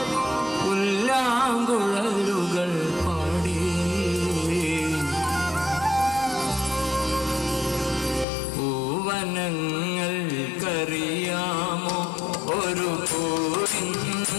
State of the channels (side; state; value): right; drops out; at 8.2 s